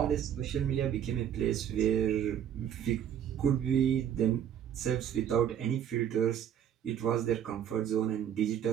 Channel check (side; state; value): left; quieter; 9.4 dB